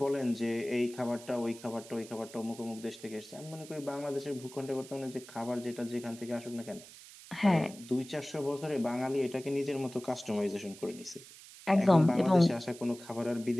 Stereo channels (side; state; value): right; noise; hiss, 18 dB below the sound